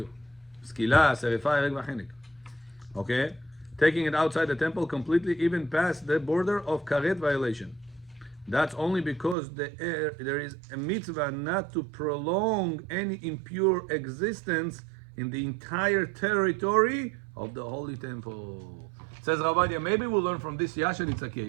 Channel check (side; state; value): left; drops out; at 9.3 s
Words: Skila, serifa, ereg v'chenek. Okay, taking it outside the temple completely, even past the border of karet violation. That's only because there is a mitzvah not to prolong any impure existence in the entire territory of the holy temple. Says Ovadia, maybe we'll learn from this Yasheritza